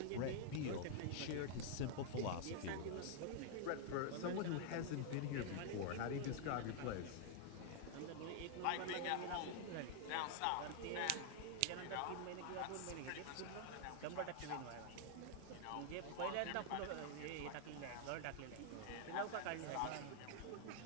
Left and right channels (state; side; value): different; both; correlation 0.00